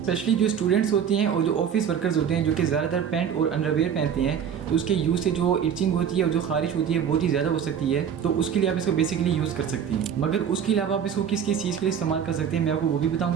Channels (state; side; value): quieter; left; 8.0 dB